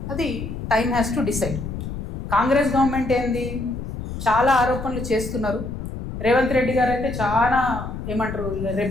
అది time has to decide. Congress government ఏంది, చాలా ఆరోపణలు చేస్తున్నారు. రేవంత్ రెడ్డి గారు అయితే చాలా ఏమంటారు,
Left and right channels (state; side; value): noise; left; rumble, 7 dB below the sound